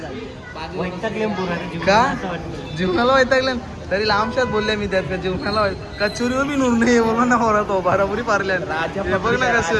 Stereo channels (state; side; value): identical; both; correlation 1.00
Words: जीवनाला वैतागले तरी लांबशात बोलले मी त्यात का जीवनाला कचोरी व भी नूर नाही बोलला ना पोरा तो बराबरी पारल्या. बघ ना